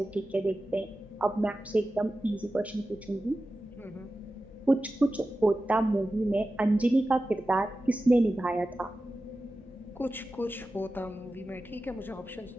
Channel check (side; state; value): both; normal; correlation 0.94